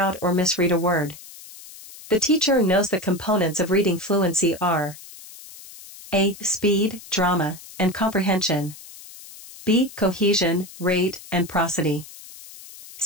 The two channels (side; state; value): left; noise; hiss, 17 dB below the sound